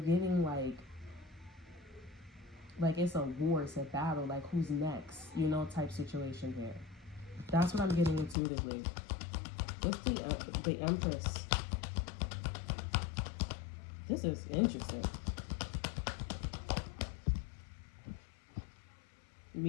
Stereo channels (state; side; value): drops out; right; at 8.3 s